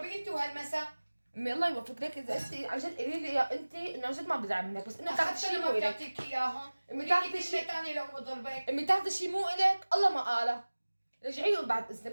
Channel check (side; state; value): both; inverted; correlation -1.00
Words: انت وهالمسا. امي الله يوفقك. ليك اذا انت عن جد قولي لي يا انت انه عن جد ما بزعل منك، بس انه تاخذي شيء مو ما الك. بتعطيك اياهم. امي تاخذي تاخذي شيء شيء ثاني لو بضربك. امي تاخذي شيء مو الك، الله ما قاله. رجعي بعد اذنك،